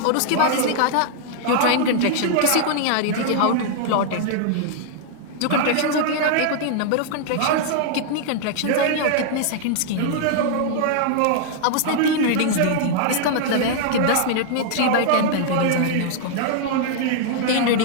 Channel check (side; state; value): both; different; correlation 0.00